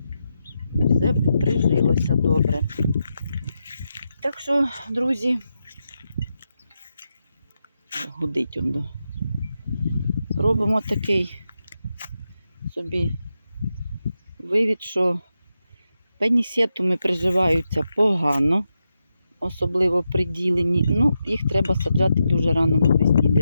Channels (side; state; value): both; inverted; correlation -0.86